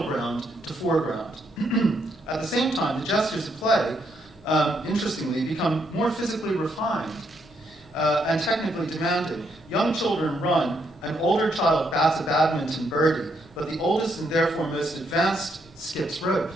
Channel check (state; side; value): noise; left; rumble, 28 dB below the sound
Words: ground to foreground. At the same time, the gestures of play, interestingly, become more physically refined and technically demanding. Young children run, an older child bats a badminton birdie, but the oldest and therefore most advanced skips rope.